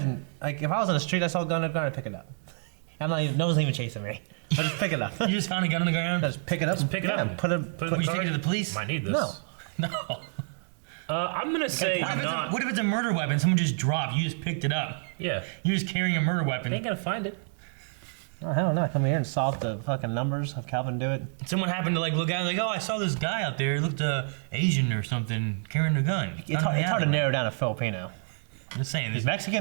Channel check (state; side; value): silent; left; 59 dB below the other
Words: Like if I was on the street, I saw a gun, I'd pick it up. I'm not even. No one's even chasing me. I just pick it up. You just found a gun on the ground? Just pick it up. Just pick it yeah, up. Put it. Put Would you car- take it to the police? Might need this. No. No. I'm gonna say What not. if it's a murder weapon? Someone just dropped. You just picked it up. Yeah, You're just carrying a murder weapon. they ain't gonna find it. Oh hell no! Come here and solve the fucking numbers. Have Calvin do it. Someone happened to like look out like, oh, I saw this guy out there. He looked Asian or something carrying a gun. It's hard to narrow down a Filipino. I'm just saying. He's This,